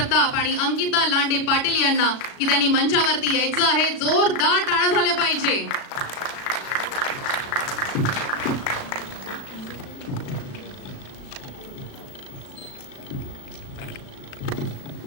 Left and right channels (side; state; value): right; late; 36 ms